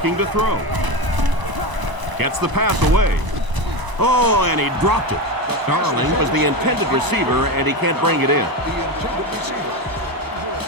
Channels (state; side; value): late; left; 1.0 ms